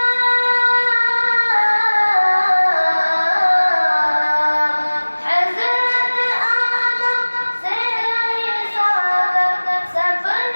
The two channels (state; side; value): inverted; both; correlation -1.00